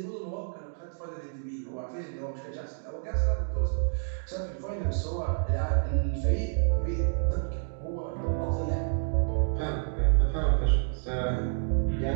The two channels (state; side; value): silent; left; digital silence